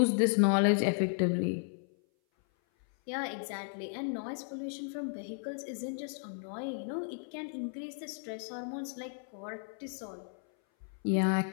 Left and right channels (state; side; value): silent; right; 55 dB below the other